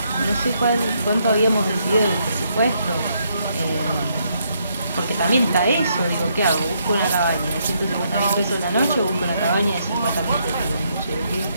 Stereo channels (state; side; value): inverted; both; correlation -0.75